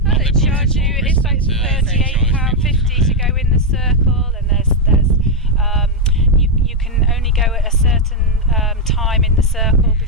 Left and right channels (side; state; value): both; normal; correlation 0.02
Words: charge you? It's like £38.50 to go in the circle, and there's you can only go at a certain time in the circle